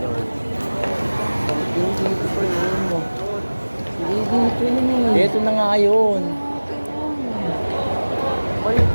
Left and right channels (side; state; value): both; inverted; correlation -1.00